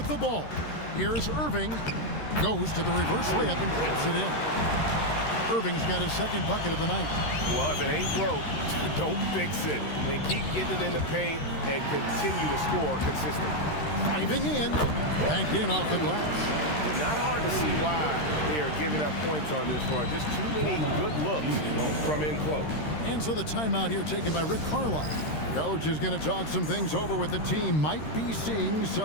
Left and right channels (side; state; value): right; late; 13 ms